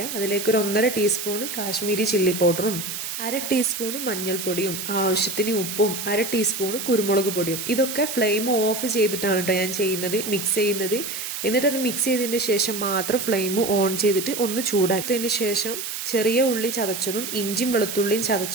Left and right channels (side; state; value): right; noise; hiss, 6 dB below the sound